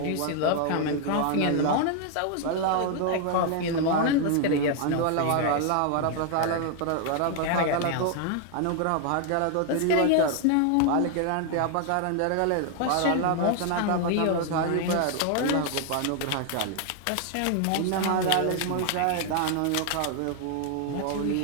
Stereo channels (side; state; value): both; different; correlation 0.00